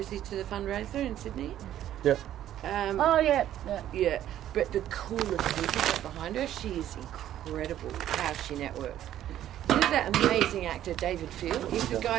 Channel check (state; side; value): quieter; left; 11.9 dB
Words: to the fundraiser in Sydney. Yep. oh, yeah. Yeah, but the coolest people got behind her, she is incredible how she networks. You know that amazing actor David Field? He's the